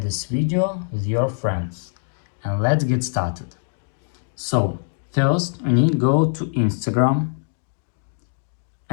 video with your friends. And let's get started. So first we need to go to Instagram,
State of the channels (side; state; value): right; silent; 63 dB below the other